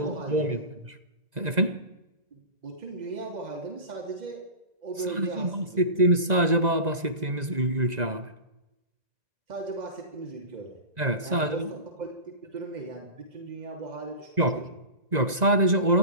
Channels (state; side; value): late; left; 2.0 ms